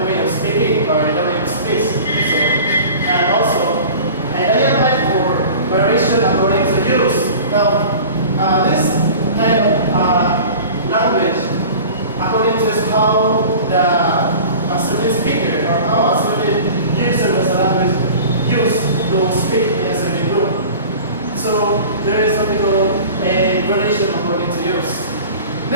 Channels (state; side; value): inverted; both; correlation -0.40